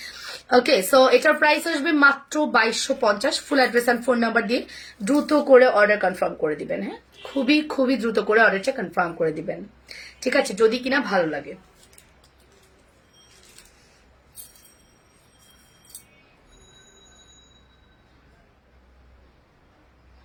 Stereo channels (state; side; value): identical; both; correlation 1.00